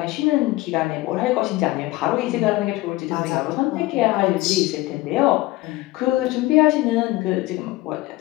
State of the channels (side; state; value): right; quieter; 19.2 dB